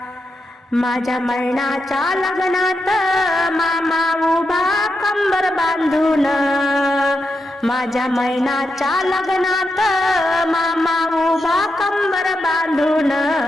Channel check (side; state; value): both; normal; correlation 0.85